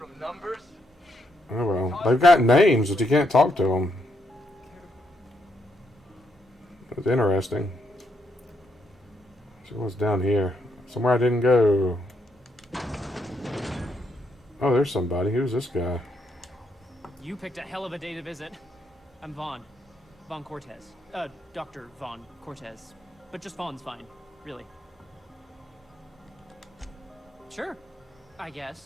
numbers? Oh well. They've got names, but you can't talk to them. That's interesting. So what's down here? Somewhere I didn't go. Oh, there's somebody. Who's this guy? You picked a hell of a day to visit. I'm Vaughn. Vaughn Cortez. Dr. Vaughn Cortez. But just Vaughn's fine, really. Sure, I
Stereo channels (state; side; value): normal; both; correlation 0.78